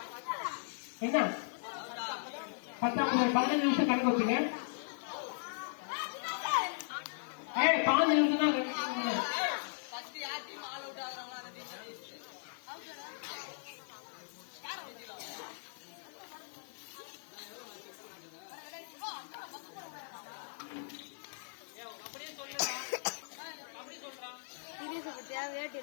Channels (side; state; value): right; silent; 53 dB below the other